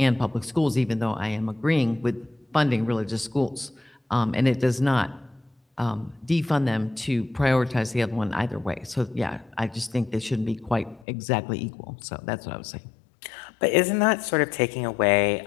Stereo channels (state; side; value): drops out; right; at 11.1 s